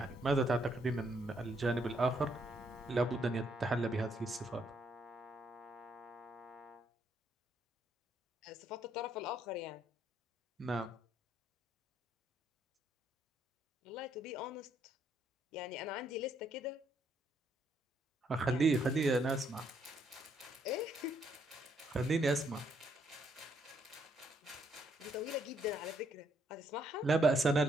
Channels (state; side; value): normal; both; correlation 0.72